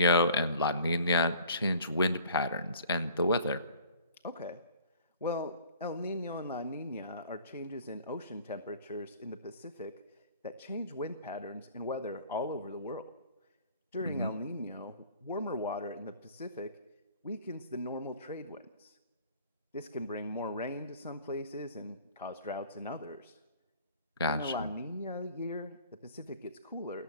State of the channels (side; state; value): both; inverted; correlation -0.50